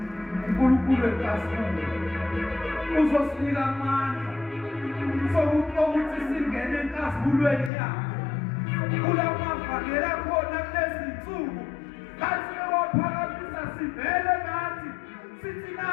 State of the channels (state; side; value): drops out; right; at 7.7 s